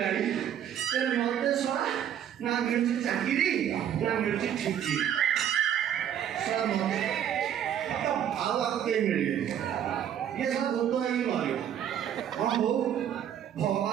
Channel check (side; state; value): left; quieter; 9.7 dB